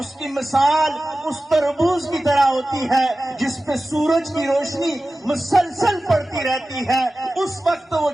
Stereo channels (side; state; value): both; normal; correlation 0.96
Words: کی مثال اس تربوز کی طرح ہوتی ہے جس پہ سورج کی روشنی مسلسل پڑتی رہتی ہے۔ اس وقت وہ